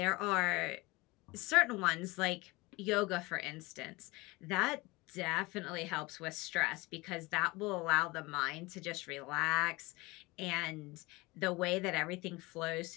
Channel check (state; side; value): quieter; right; 22.9 dB